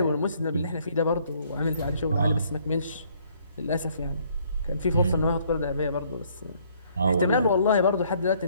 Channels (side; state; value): both; inverted; correlation -0.63